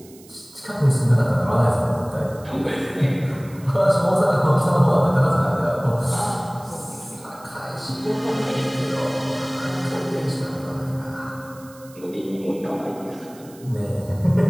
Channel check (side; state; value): right; noise; hiss, 24 dB below the sound